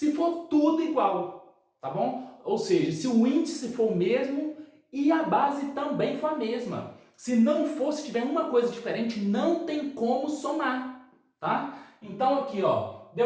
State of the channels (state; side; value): identical; both; correlation 1.00